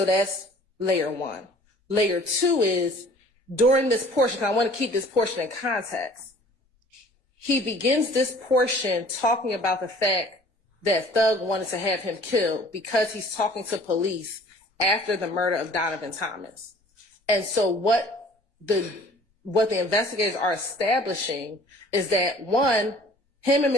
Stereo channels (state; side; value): late; right; 1.2 ms